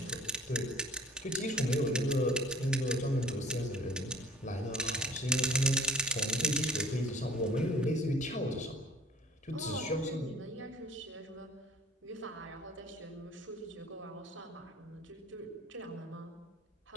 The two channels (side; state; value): both; normal; correlation 0.48